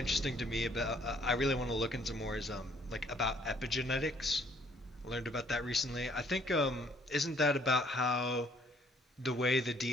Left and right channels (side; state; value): both; normal; correlation 0.63